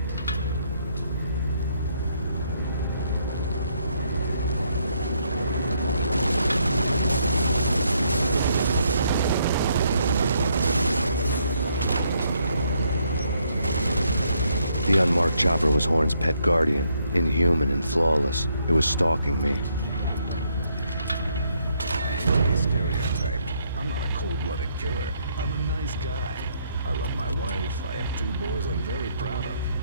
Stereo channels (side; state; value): both; inverted; correlation -0.72